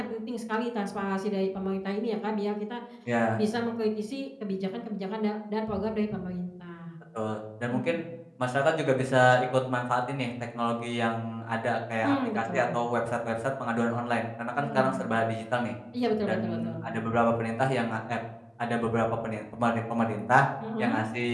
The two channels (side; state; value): both; identical; correlation 1.00